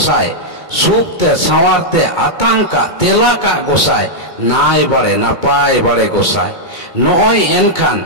सुखते सवारते आतंका तेला का गोसाई नाय बाड़े नापाय बाड़े गोसाई नॉय एनखान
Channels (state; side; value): late; right; 2.2 ms